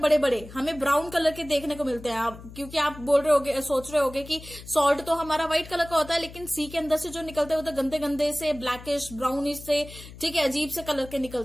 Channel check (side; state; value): left; noise; hum, 16 dB below the sound